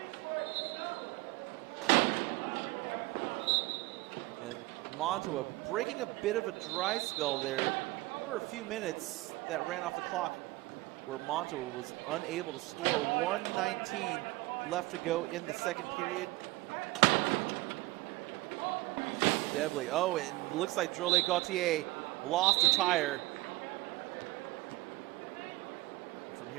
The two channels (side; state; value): left; quieter; 20.5 dB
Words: And Monttawa breaking a bit of a dry spell there. There were a few minutes that ran off the clock where Monttawa was unable to score. 1:19 left to go in the second period. Debley, oh, it looks like Drolet Gauthier lost a tire. From